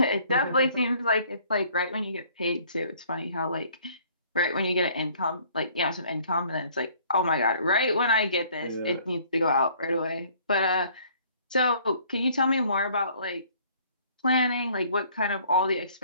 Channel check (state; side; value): inverted; both; correlation -0.58